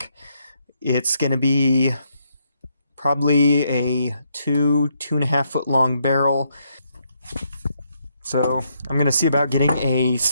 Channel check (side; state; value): both; inverted; correlation -0.76